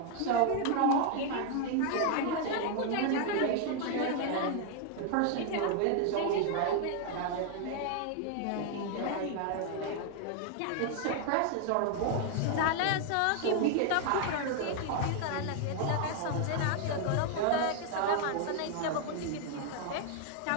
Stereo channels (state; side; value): different; both; correlation 0.00